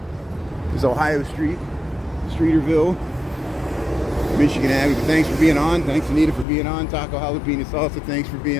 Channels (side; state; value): right; drops out; at 6.5 s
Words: Ohio Street, Streeterville, Michigan Avenue. But thanks for being on. Thanks, Anita, for being on. Taco Jalapeno Salsa, thanks for